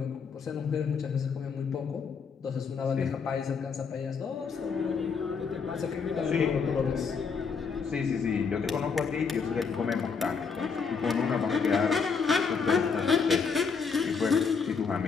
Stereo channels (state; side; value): quieter; right; 5.5 dB